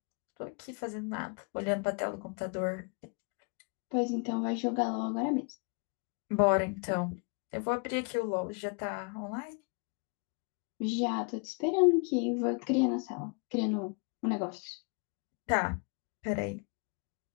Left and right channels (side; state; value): right; quieter; 35.2 dB